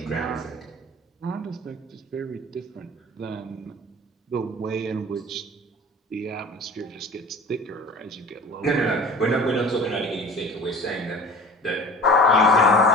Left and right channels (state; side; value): normal; both; correlation 0.41